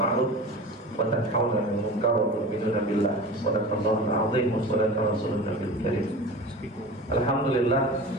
wa tanhauna 'anil munkar wa tu'minuna billah. Shadaqallahul 'azim wa shadaqa rasulun nabiyil karim. Alhamdulillah,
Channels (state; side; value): normal; both; correlation 0.34